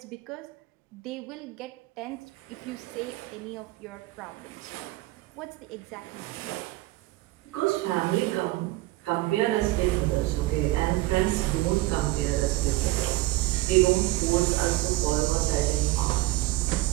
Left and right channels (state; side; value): quieter; left; 18.9 dB